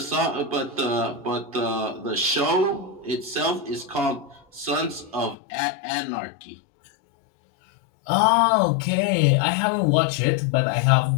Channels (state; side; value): drops out; right; at 5.4 s